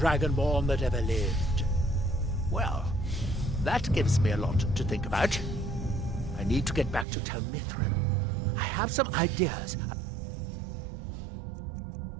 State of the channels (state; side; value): drops out; left; at 7.1 s